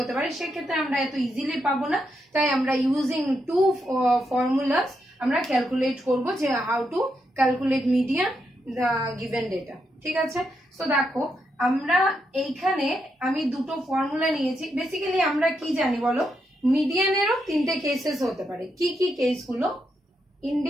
পারে, সেক্ষেত্রে আমরা এত ইজিলি পাবো না। তাই আমরা ইউজিং 2 ফর্মুলাস আমরা ক্যালকুলেট করব যে how to calculate median the given data, ঠিক আছে। সো দেখো আমরা এইখানে আমি দুটো ফর্মুলা নিয়েছি। বেসিক্যালি আমরা কি জানি বলো, মিডিয়ানেরও তিনটে কেসেস হতে পারে। কি কি কেসগুলো?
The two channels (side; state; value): both; normal; correlation 0.82